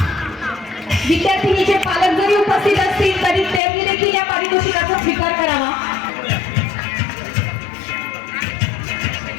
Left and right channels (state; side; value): drops out; right; at 3.6 s